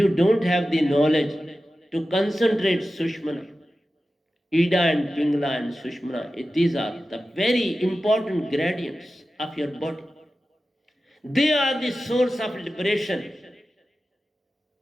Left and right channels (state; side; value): normal; both; correlation 0.94